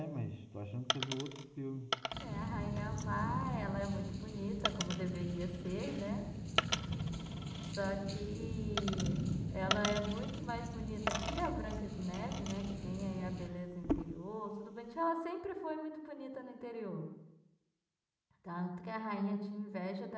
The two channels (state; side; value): identical; both; correlation 1.00